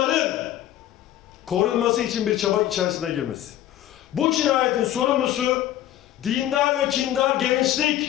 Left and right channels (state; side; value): quieter; right; 12.8 dB